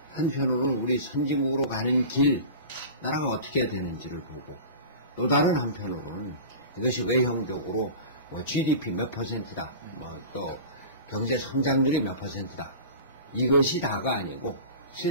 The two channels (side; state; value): both; inverted; correlation -0.35